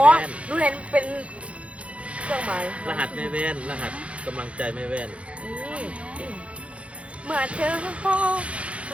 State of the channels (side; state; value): left; late; 0.062 ms